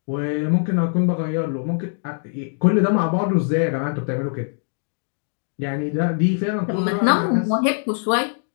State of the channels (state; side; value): silent; right; 56 dB below the other